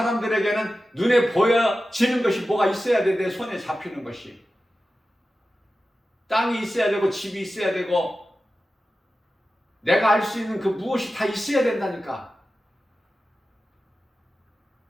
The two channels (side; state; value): both; normal; correlation 0.94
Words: 눈에 보여지는 것이 뭐가 있어야 돼. 내 손에 잡히는 것이. 땅이 있어야 되고 집이 있어야 되고 내가 알 수 있는 그 무엇이 다 있어야 된다니까.